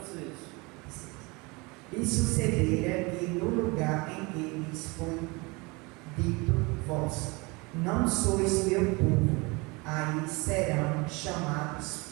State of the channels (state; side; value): quieter; left; 26.6 dB